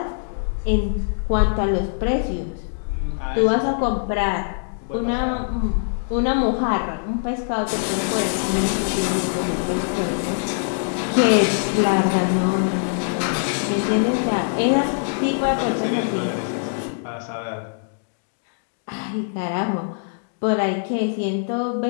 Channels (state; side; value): silent; right; digital silence